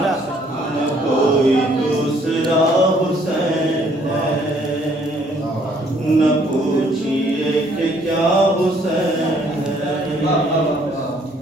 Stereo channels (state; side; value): normal; both; correlation 0.63